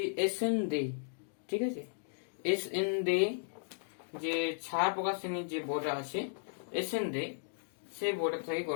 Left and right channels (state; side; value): silent; right; digital silence